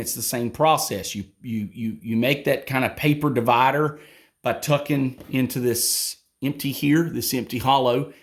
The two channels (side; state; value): both; identical; correlation 1.00